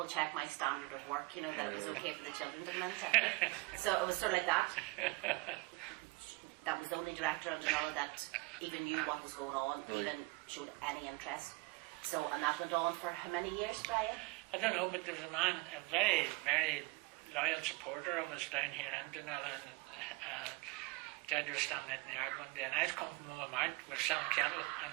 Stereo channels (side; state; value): left; quieter; 24.6 dB